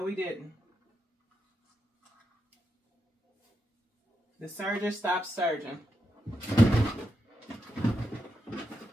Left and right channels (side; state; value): both; normal; correlation 0.85